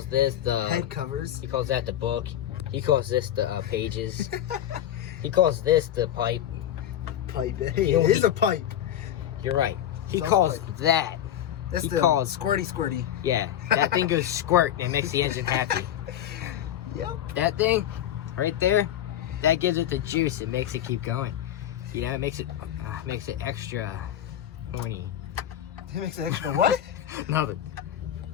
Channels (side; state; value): right; quieter; 11.1 dB